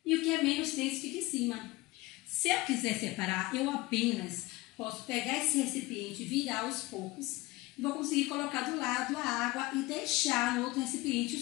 e o que é menos denso fica em cima. Se eu quiser separar, eu apenas posso pegar esse recipiente, virar aos poucos e vou conseguir colocar do lado a água e deixar no outro recipiente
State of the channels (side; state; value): right; quieter; 20.3 dB